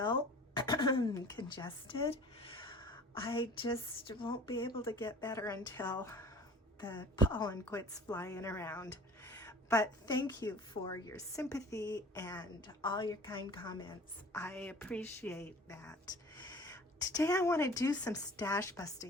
congested. I just won't be able to get better until the pollen quits flying around. But thank you for your sympathy and all your kind comments. I appreciate that. Today I want to do some stash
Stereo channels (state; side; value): normal; both; correlation 0.45